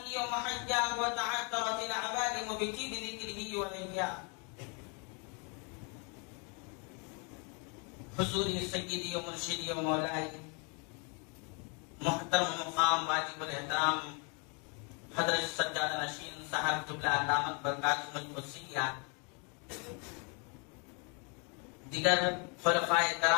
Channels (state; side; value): quieter; right; 35.3 dB